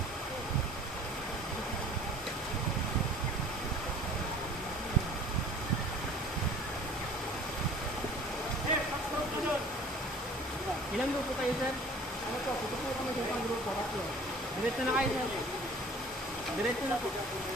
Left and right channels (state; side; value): normal; both; correlation 0.48